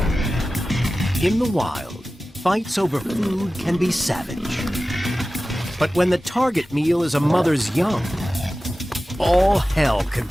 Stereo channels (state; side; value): normal; both; correlation 0.95